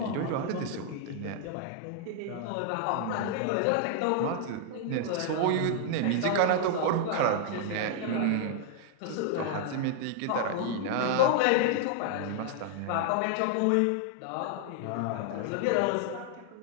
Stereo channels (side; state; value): both; different; correlation 0.00